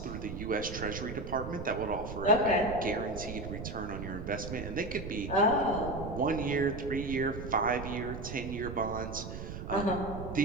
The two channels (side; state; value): right; noise; rumble, 8 dB below the sound